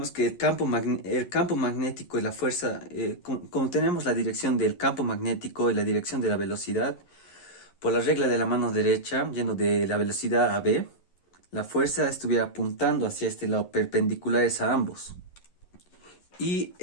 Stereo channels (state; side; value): late; right; 11 ms